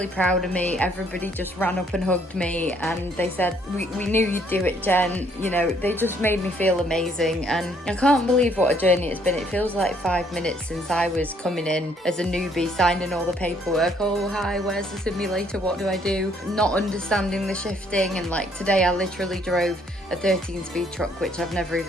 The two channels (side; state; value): both; normal; correlation 0.66